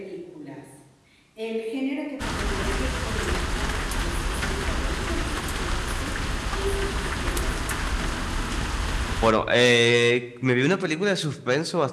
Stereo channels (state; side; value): identical; both; correlation 1.00